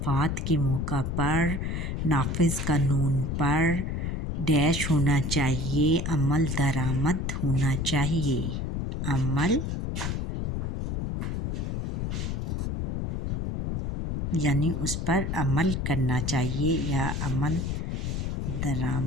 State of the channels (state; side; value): noise; left; rumble, 2 dB below the sound